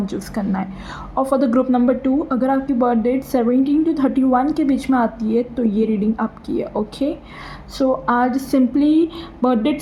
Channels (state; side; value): identical; both; correlation 1.00